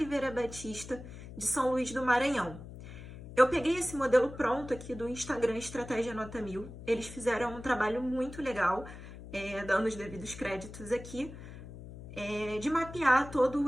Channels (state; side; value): noise; left; hum, 14 dB below the sound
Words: Batista, de São Luís do Maranhão. Eu peguei esse modelo pronto aqui do Instagram Estratégia Nota 1000. Eles fizeram um trabalho muito legal, dando os devidos créditos aqui, de mapear